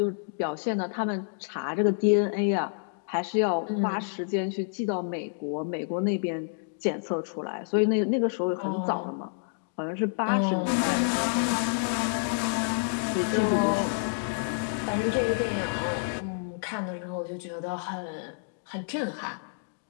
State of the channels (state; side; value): silent; right; digital silence